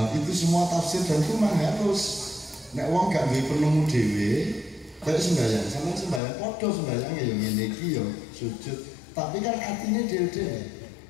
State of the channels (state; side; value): drops out; right; at 6.2 s